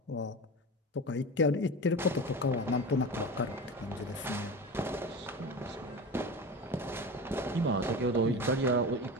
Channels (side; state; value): both; normal; correlation 0.29